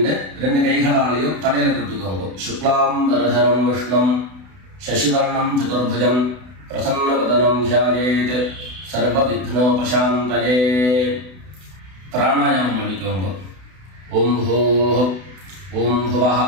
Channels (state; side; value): late; left; 32 ms